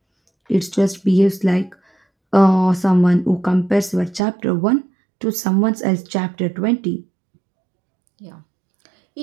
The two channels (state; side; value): drops out; left; at 4.2 s